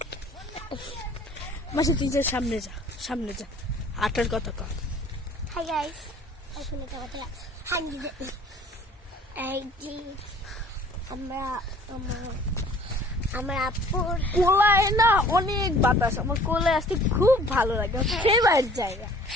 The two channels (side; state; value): both; normal; correlation 0.51